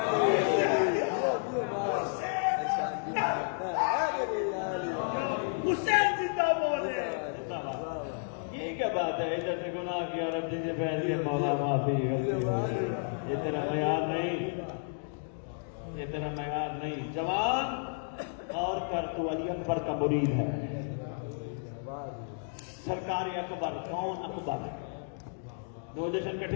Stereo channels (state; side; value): silent; right; digital silence